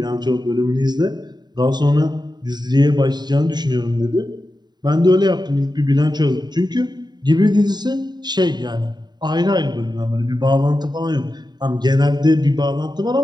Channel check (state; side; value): late; left; 0.20 ms